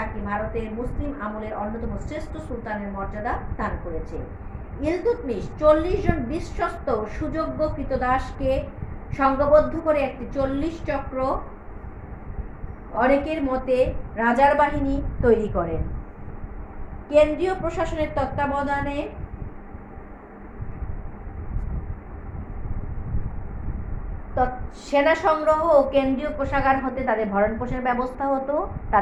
ভারতের মুসলিম আমলের অন্যতম শ্রেষ্ঠ সুলতানের মর্যাদা দান করেছে। ইলতুৎমিশ 40 জন বিশ্বস্ত সুযোগ্য কৃতদাসকে সংঘবদ্ধ করে একটি 40 চক্র অনেকের মতে রাজার বাহিনী তৈরি করেন। কেন্দ্রীয় প্রশাসনের তত্ত্বাবধানে সেনা সংগ্রহ ও কেন্দ্রীয় কোষাগার হতে তাদের ভরণ পোষণের ব্যবস্থা হতো।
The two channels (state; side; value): identical; both; correlation 1.00